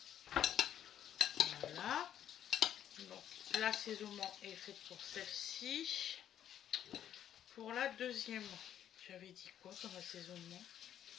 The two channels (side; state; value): right; quieter; 10.4 dB